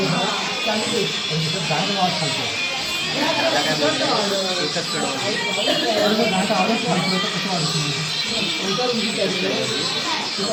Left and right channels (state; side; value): identical; both; correlation 1.00